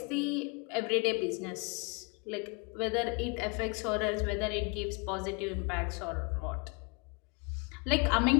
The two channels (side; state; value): right; quieter; 31.4 dB